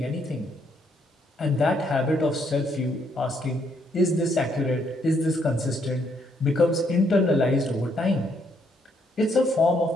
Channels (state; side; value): normal; both; correlation 0.72